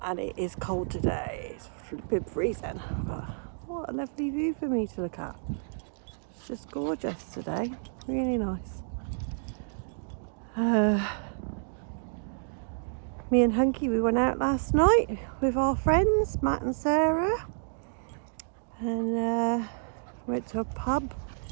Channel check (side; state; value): left; silent; digital silence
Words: it is cold today. It's flipping freezing, but what a lovely view for me to look at. It's just gorgeous today, really nice. Me and Hunky, we went out last night with our friends, Matt and Sarah, and went to a pub.